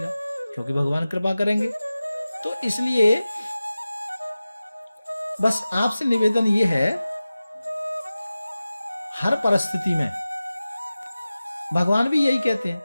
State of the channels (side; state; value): both; inverted; correlation -0.96